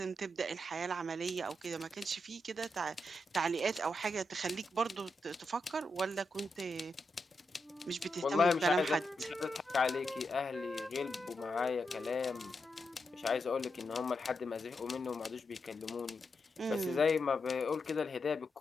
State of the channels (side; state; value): both; normal; correlation 0.85